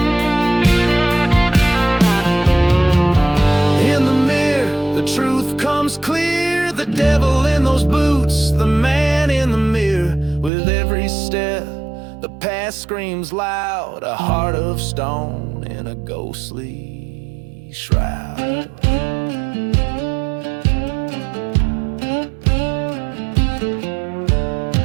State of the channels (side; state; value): left; drops out; at 10.5 s